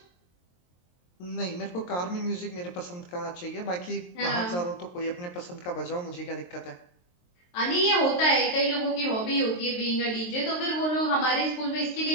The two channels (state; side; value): late; right; 23 ms